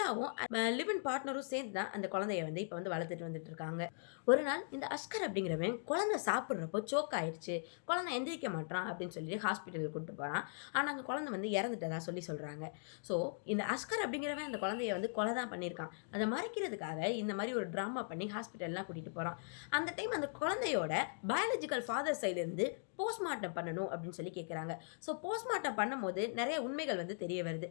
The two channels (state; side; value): silent; right; digital silence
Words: லிவ் இன் பார்ட்னரும் சேர்ந்து தான் அந்த குழந்தைய வந்து இப்போ வந்து வளர்த்துட்டு வந்துட்டு இருக்காங்க. ஒரு நாள் இந்த அஸ்கர் அப்படிங்கிறவன் குழந்தை சாப்பிட்றப்போ சோக் ஆயிடுச்சு, குழந்தை எந்திரிக்க மாட்டான் அப்படின்னு சொல்லி ஹாஸ்பிட்டலுக்கு கூப்பிட்டு போகிறான். ஆனால் அந்த குழந்தை வந்து இறந்துட்டதா சொல்கிறாங்க. ஸோ இந்த அஸ்கர் அப்படிங்கிறவன் அந்த குழந்தைய வந்து கொலை தான் பண்ணியிருக்கான். அதை மறைக்கிறதுக்காக இந்த மாதிரி ஒரு ட்ராமா பண்ணி ஹாஸ்பிட்டல்லாம் கூட்டிகிட்டு போகிறான். அந்த டைம் அந்த குழந்தையோட பயாலஜிக்கல் ஃபாதர் சைட்லேருந்து போஸ்ட்மார்ட்டம் பண்ணணும் அப்படின்னு சொல்லி கேட்குறாங்க. ஸோ போஸ்ட்மார்ட்டம் பண்ணும்போது நிறைய உண்மைகள் வந்து தெரிய வருது.